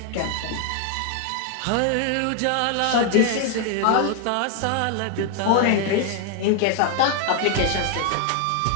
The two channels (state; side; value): different; both; correlation 0.00